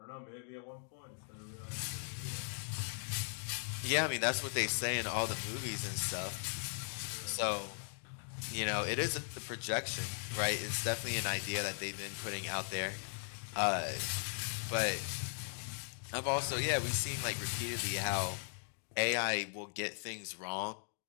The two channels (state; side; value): silent; right; digital silence